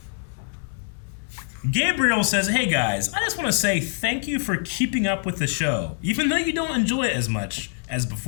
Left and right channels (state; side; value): silent; right; 62 dB below the other